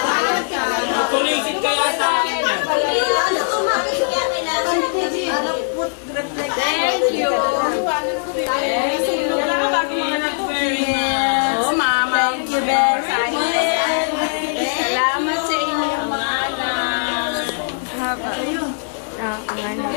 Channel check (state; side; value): silent; right; 66 dB below the other